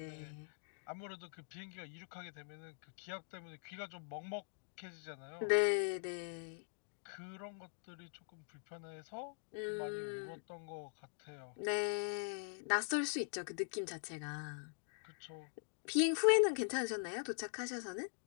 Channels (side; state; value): right; silent; digital silence